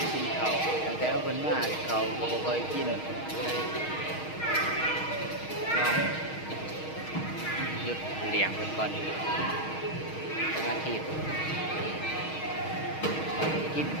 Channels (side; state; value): right; late; 6.4 ms